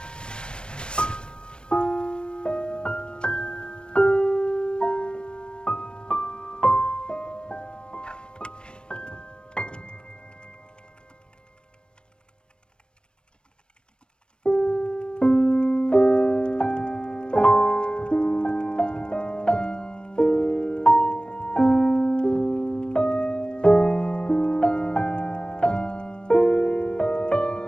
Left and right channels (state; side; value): late; right; 0.054 ms